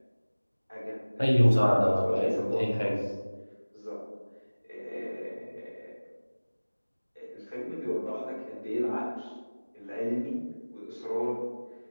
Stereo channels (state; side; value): inverted; both; correlation -1.00